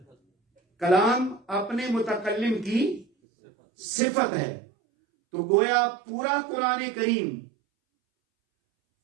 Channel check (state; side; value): drops out; left; at 3.1 s